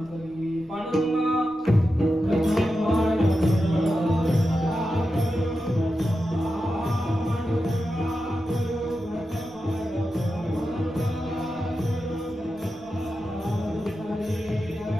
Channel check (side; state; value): left; noise; rumble, 27 dB below the sound